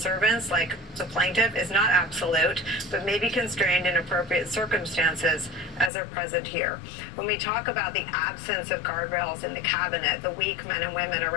like the plaintiff is not absolute, but may be constrained in appropriate circumstances as are present here. When we talk about the absence of guardrails in the cabinet, the weak men and women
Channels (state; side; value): drops out; right; at 5.9 s